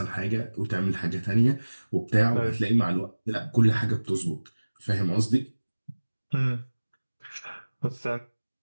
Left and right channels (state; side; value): inverted; both; correlation -1.00